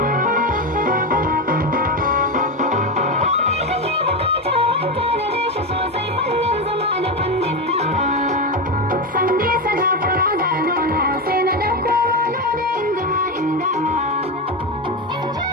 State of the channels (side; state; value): both; normal; correlation 0.13